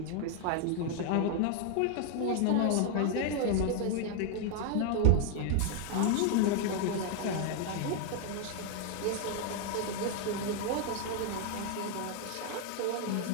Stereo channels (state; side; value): different; both; correlation 0.00